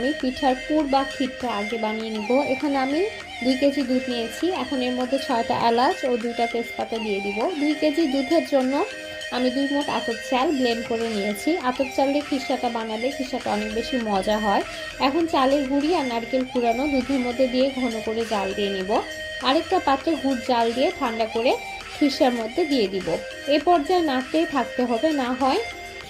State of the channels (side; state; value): both; identical; correlation 1.00